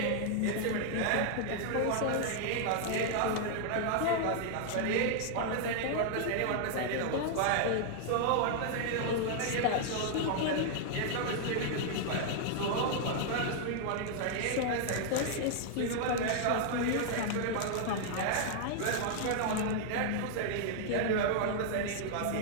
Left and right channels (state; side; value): different; both; correlation -0.01